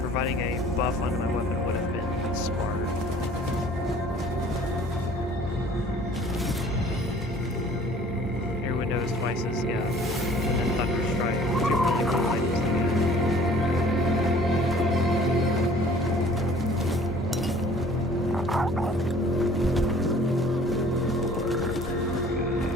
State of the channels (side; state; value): both; normal; correlation 0.52